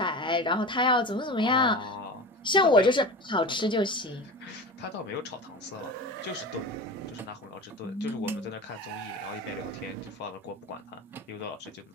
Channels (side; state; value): both; normal; correlation 0.31